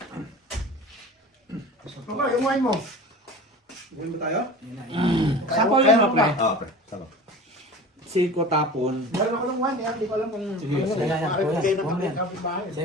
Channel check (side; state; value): both; normal; correlation 0.37